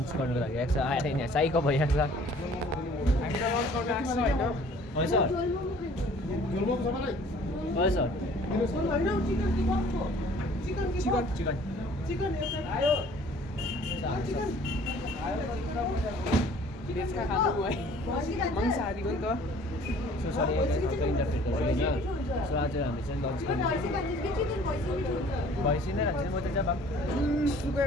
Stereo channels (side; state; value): both; normal; correlation 0.53